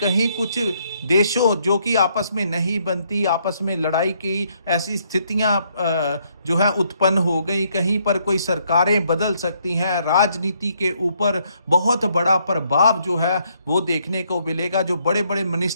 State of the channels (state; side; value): inverted; both; correlation -0.71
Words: कुछ देशों जो कि आपस में नहीं बनती, आपस में लड़ाई की ऐसी स्थितियां जो है उत्पन्न हो गई। कहीं पर कोई सरकारें बदल सकती हैं, राजनीति के ऊपर बहुत बड़ा प्रभाव जो है वो देखने को मिलेगा। जो बड़े बड़े